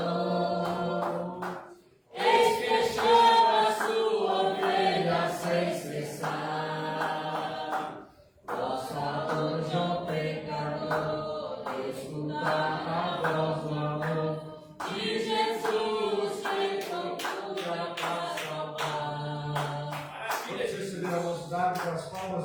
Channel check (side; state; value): both; identical; correlation 1.00